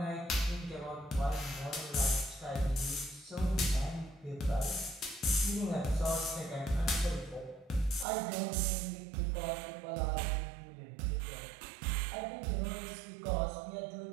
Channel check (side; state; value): left; drops out; at 8.1 s